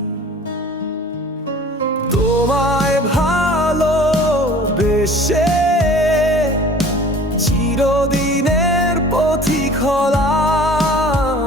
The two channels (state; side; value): normal; both; correlation 0.46